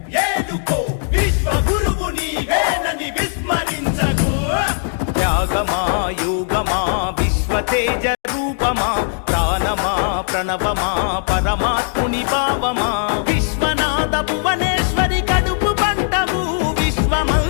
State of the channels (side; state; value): right; silent; digital silence